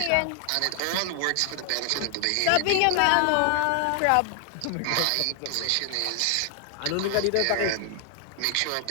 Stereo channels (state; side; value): different; both; correlation 0.00